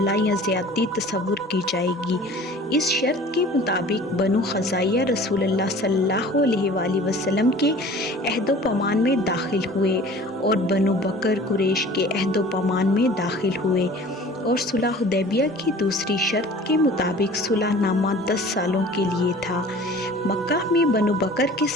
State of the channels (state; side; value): normal; both; correlation 0.45